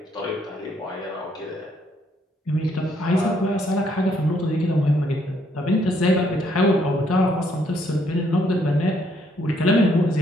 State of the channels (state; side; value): normal; both; correlation 0.70